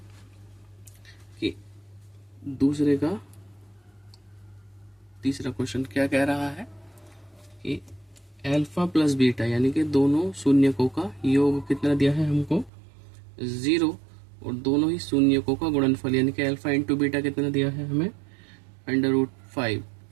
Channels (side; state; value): left; drops out; at 12.7 s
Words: कि दूसरे का तीसरा क्वेश्चन क्या कह रहा है कि अल्फा प्लस बीटा यानी कि दोनों शून्यकों का योग कितना दिया है हमको, 0, और दोनों ही शून्यकों का गुणनफल यानी कि अल्फा इंटू बीटा कितना दिया है हमें, √5,